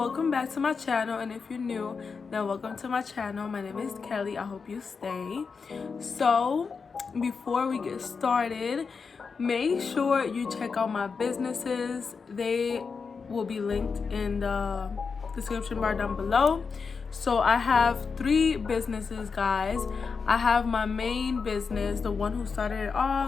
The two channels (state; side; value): quieter; right; 5.2 dB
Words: back to my channel, and if you're new, then welcome to my channel. My name is Kelly. I hope you stay. So before we get started, make sure you check out my businesses. They will be linked in the description bar down below. So I have 3 businesses, guys. I have my main business, the one who started it